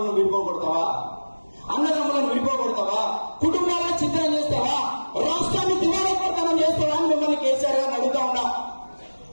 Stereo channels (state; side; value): inverted; both; correlation -1.00